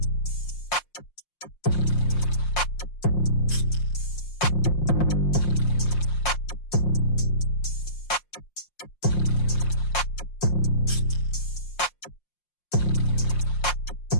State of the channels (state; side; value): late; right; 5.6 ms